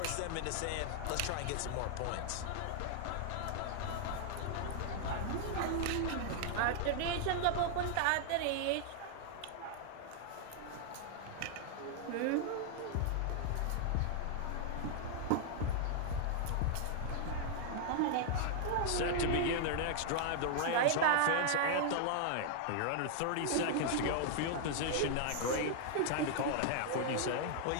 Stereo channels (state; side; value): different; both; correlation 0.00